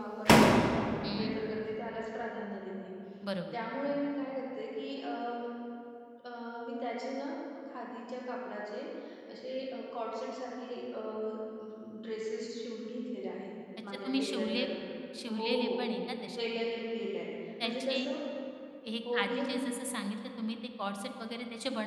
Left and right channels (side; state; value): both; identical; correlation 1.00